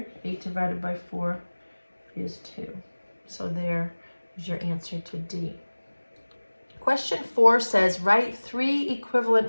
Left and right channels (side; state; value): both; inverted; correlation -1.00